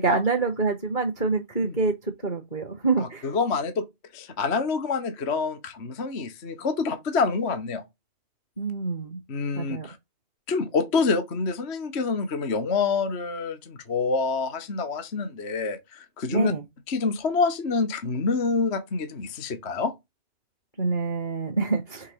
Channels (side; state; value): right; late; 3.1 ms